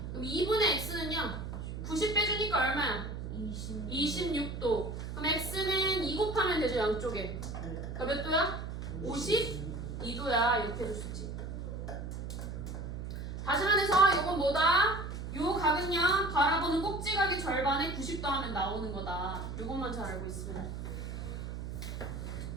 그럼 2분의 x는요, 90 빼주니까 얼마야? 26도. 그럼 x는 2 곱하면 되죠, 양쪽에. 그러니까 몇 도야? 52도야. 이렇게 해줄 수 있지. 다시 말해서 이건 뭐다? 요 각은요 바라보는 꼭지각의 절반에 90도 하면 나오는 거다. 요것만 잘 알고 있으면.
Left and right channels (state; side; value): noise; right; hum, 6 dB below the sound